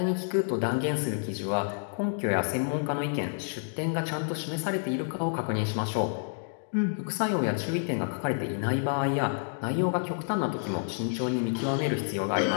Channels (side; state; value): right; silent; digital silence